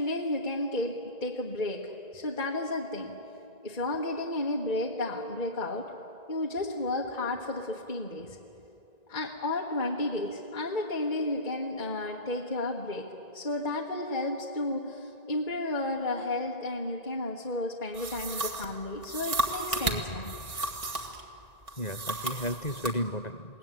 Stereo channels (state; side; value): late; right; 1.9 ms